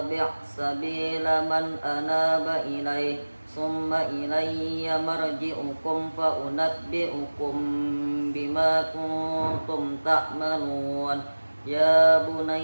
sabila man anaba ilayhi summa ilayya marji'ukum fa unabbi'ukum bima kuntum ta'malun ya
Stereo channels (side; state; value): both; inverted; correlation -1.00